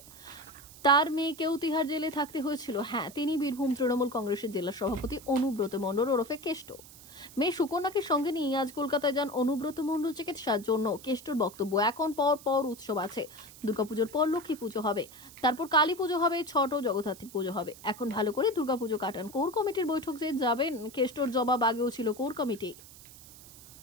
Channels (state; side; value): noise; right; hiss, 19 dB below the sound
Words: তার মেয়েকেও তিহার জেলে থাকতে হয়েছিল। হ্যাঁ, তিনি বীরভূম তৃণমূল কংগ্রেসের জেলা সভাপতি অনুব্রত মণ্ডল ওরফে কেষ্ট। মেয়ে সুকন্যাকে সঙ্গে নিয়ে আজ কলকাতায় যান অনুব্রত মণ্ডল চিকিৎসার জন্য। কেষ্টর বক্তব্য, এখন পর উৎসব আছে, দুর্গাপুজোর পর লক্ষ্মী পুজো হবে, তারপর কালী পুজো হবে, ছট ও জগদ্ধাত্রী পুজো হবে, এখন ভালো করে দুর্গাপুজো কাটান। কোর কমিটির বৈঠক যে যাবেন, কেষ্টর জবাব, আগেও ছিল কোর কমিটি।